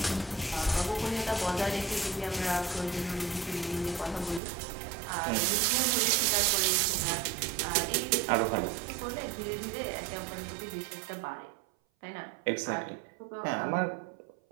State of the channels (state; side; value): drops out; left; at 4.4 s